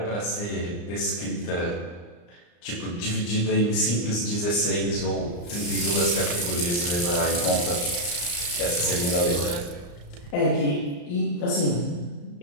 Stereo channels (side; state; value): right; late; 34 ms